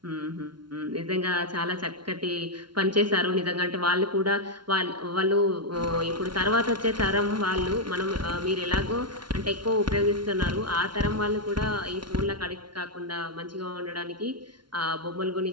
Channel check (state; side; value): late; left; 0.72 ms